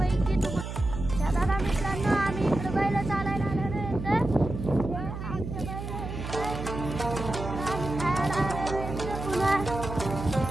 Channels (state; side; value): noise; right; hum, 7 dB below the sound